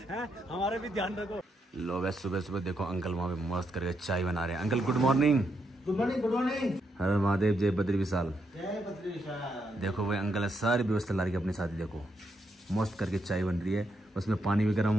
हमारा भी ध्यान रखो। लो वैसे सुबह सुबह देखो अंकल वहाँ पे मस्त करके चाय बना रहे हैं। Uncle good morning. Good morning good morning. हर महादेव, जय बद्री विशाल। जय बद्री विशाल। देखो भाई अंकल ने सारी व्यवस्था ला रही अपने साथ ही। देखो मस्त करके चाय बन रही है, उसमें पानी भी गर्म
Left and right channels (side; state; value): both; normal; correlation 0.79